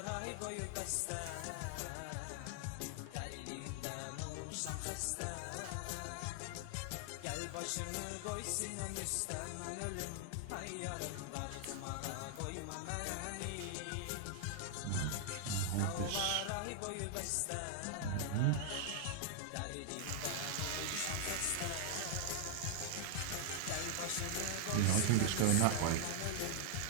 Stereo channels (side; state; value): both; different; correlation 0.00